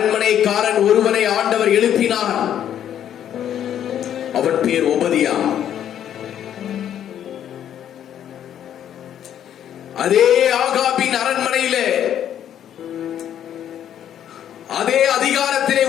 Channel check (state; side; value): quieter; right; 10.1 dB